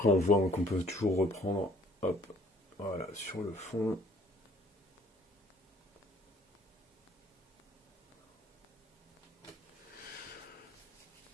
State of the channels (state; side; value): normal; both; correlation 0.58